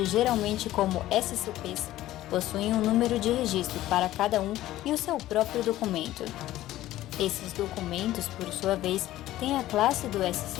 geralmente como SCPs, possuem um número de registro para cada um e o seu próprio documento. Esses documentos, por sua vez, têm a classe do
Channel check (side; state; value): right; quieter; 14.9 dB